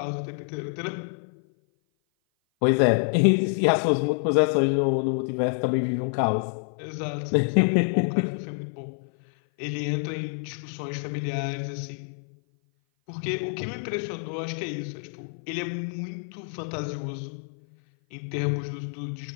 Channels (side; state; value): right; silent; 56 dB below the other